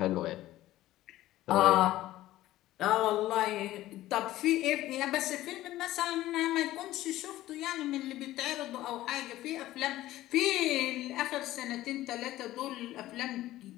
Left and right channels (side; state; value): right; quieter; 15.4 dB